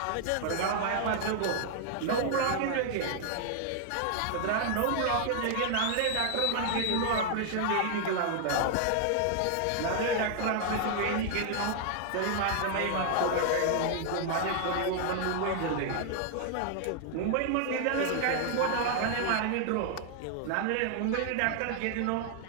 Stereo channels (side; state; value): both; different; correlation 0.00